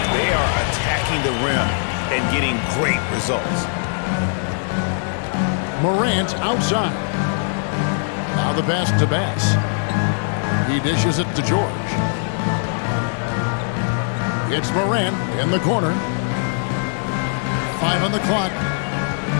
They are attacking the rim and getting great results. Morant outside. Now the pass to Bass. He dishes it to George. It's Morant in the corner. 5 on the clock.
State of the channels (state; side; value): silent; right; 65 dB below the other